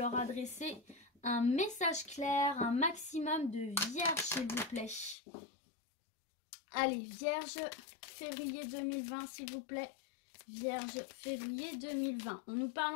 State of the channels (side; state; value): right; drops out; at 5.2 s